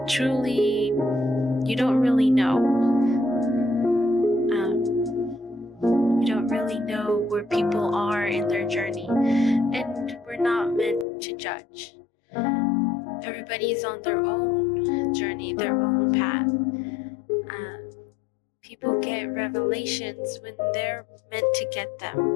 truly, you don't really know. You don't really know where people are in their journey. And we're not meant to judge. Everybody's on their own journey, their own path. People get revelations when they're meant to get them.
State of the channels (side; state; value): right; drops out; at 11.1 s